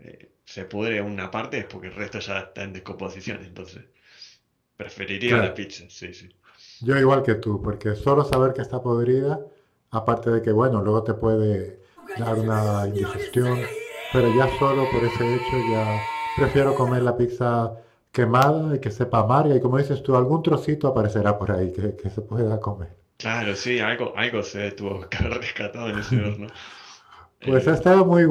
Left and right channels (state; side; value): identical; both; correlation 1.00